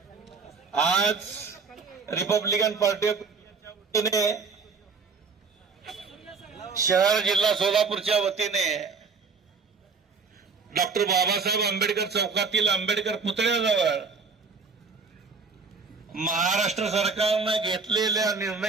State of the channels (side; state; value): left; quieter; 4.8 dB